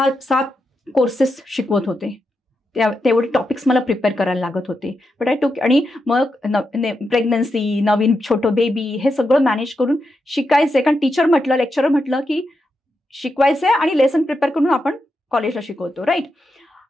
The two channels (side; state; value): both; normal; correlation 0.86